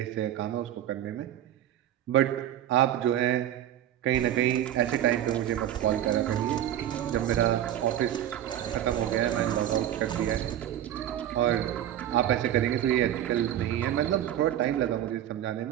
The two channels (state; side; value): quieter; left; 11.6 dB